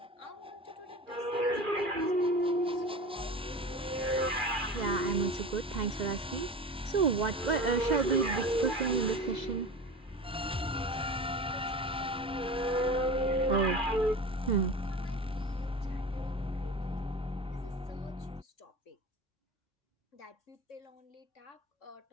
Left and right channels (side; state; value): both; normal; correlation 0.32